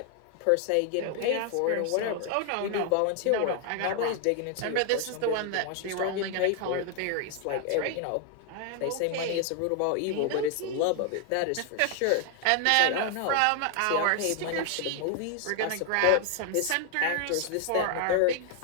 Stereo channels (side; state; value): both; different; correlation 0.00